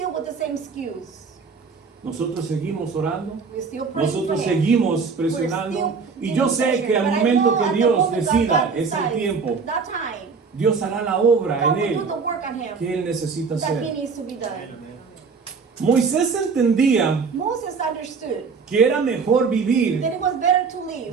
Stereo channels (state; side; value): quieter; left; 5.2 dB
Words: with the same excuse. Nosotros seguimos orando, We're still praying for nosotros him. seguimos presionando y yo sé que al momento que Dios decida ese tiempo, that time, Dios hará la obra God en will do Él the work on him que Él necesita that he hacer. needs to be done. Moisés entendía Moses understood que era mejor vivir that it was better to live